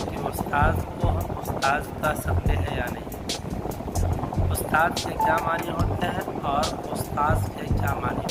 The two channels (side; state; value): both; identical; correlation 1.00